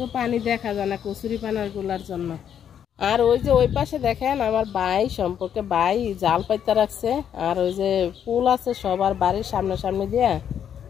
পানি দেখা যায় না কচুরি পানার গুলার জন্য। আর ওই যে ওই পাশে দেখেন আমার ভাই সম্পর্কে ভাই জাল পাইতে রাখছে, আর ওই যে ফুল আছে সবার বাড়ির সামনে দিয়ে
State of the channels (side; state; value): right; quieter; 8.9 dB